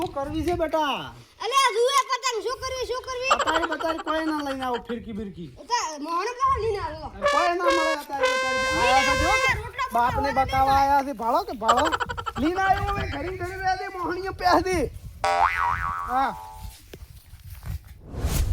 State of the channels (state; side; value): identical; both; correlation 1.00